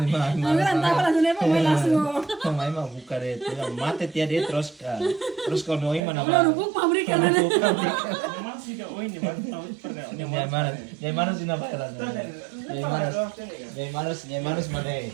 Manas. Ang tawa lang na pa may laso. May mabuka dito. Mate tiya dito Roska. Roska no ima na Wala ba? rubuk pabrik ka na. Ni Manas sinabayran. Ni Manas mane.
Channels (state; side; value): drops out; left; at 6.0 s